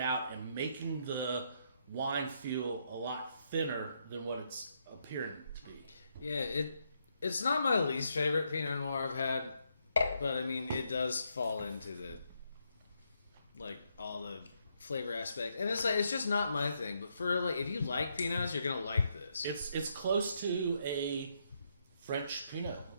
out and making the wine feel a lot thinner than what it's appearing to be. Yeah, it's not my least favorite Pinot Noir I've had, but I mean it does fall into the all the flavor aspect, and it's just not my thing. But for if you like Pinots, you're gonna like this. It's close to a French Pinot.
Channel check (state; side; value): inverted; both; correlation -0.77